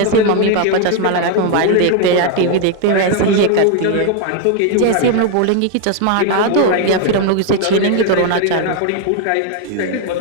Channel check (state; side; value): different; both; correlation 0.01